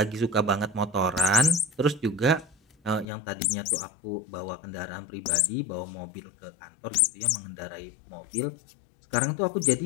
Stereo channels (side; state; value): right; drops out; at 3.1 s